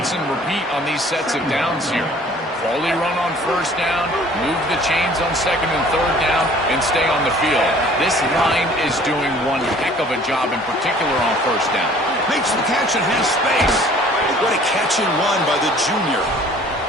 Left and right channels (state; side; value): normal; both; correlation 0.52